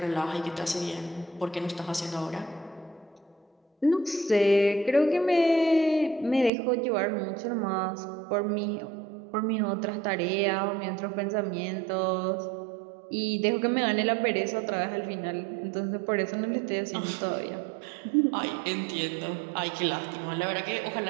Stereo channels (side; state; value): left; drops out; at 6.5 s